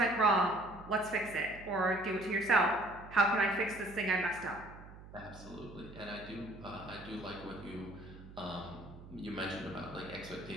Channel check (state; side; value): noise; right; hum, 17 dB below the sound